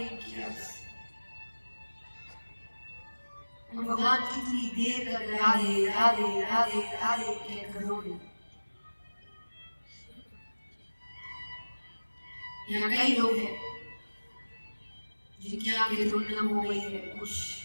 किया। और भगवान कितनी देर तक राधे राधे राधे राधे कहकर रोए। यहाँ कई लोग हैं जिनकी आंखें धुंधली हो गई है, कुछ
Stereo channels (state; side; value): inverted; both; correlation -1.00